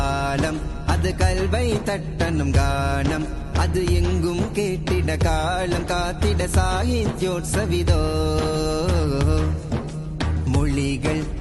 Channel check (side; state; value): both; identical; correlation 1.00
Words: அது கல்வை தட்டனும் கானம், அது எங்கும் கேட்டிட காலம் காத்திட சாகித்யோற்சவிதோ. மொழிகள்